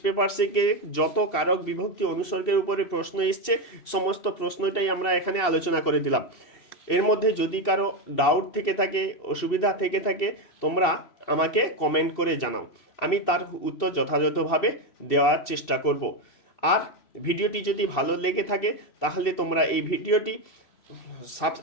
পেপার থেকে যত কারক বিভক্তি অনুসর্গের উপরে প্রশ্ন এসছে সমস্ত প্রশ্নটাই আমরা এখানে আলোচনা করে দিলাম। এর মধ্যে যদি কারো ডাউট থেকে থাকে, অসুবিধা থেকে থাকে, তোমরা আমাকে কমেন্ট করে জানাও, আমি তার উত্তর যথাযথভাবে দেওয়ার চেষ্টা করব। আর ভিডিওটি যদি ভালো লেগে থাকে তাহলে তোমরা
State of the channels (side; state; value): right; late; 2.7 ms